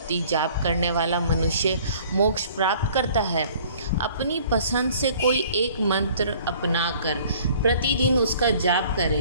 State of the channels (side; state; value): both; inverted; correlation -0.53